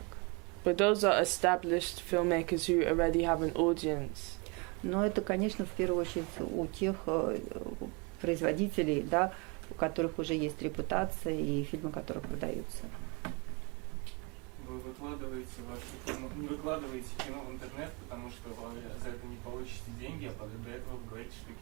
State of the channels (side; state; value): left; quieter; 29.8 dB